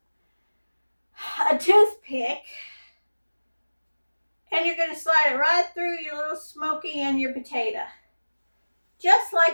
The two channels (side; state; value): both; inverted; correlation -1.00